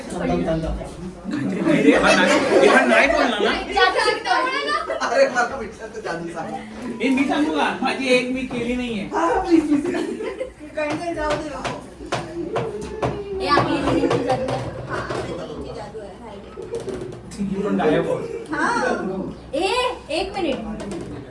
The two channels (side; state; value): both; identical; correlation 1.00